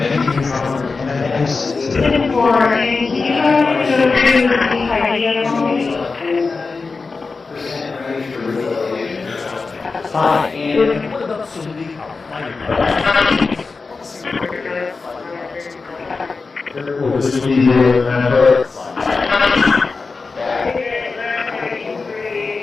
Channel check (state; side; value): quieter; right; 4.3 dB